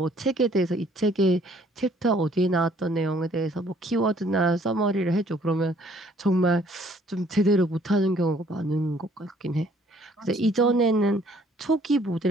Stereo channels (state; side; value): normal; both; correlation 0.61